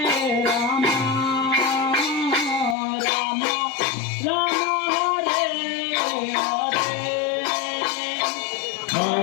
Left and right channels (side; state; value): right; drops out; at 2.8 s